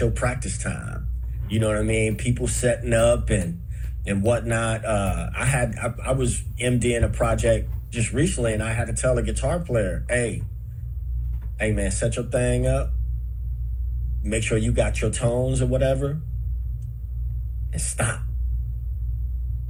practice time. You know what I mean? People setting up and whatnot. I was MDing a project just recently, and I had to tell a guitar player, hey man, set your thing up. Make sure you got your tones or whatever, and stop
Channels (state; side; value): identical; both; correlation 1.00